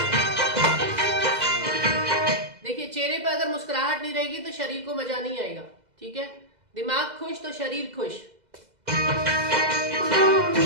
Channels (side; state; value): left; late; 2.0 ms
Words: चेहरे पर अगर मुस्कुराहट नहीं रहेगी तो शरीर को मजा नहीं आएगा। ठीक है, दिमाग खुश तो शरीर खुश।